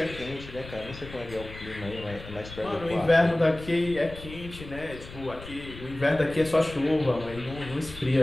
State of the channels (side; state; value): left; noise; rumble, 14 dB below the sound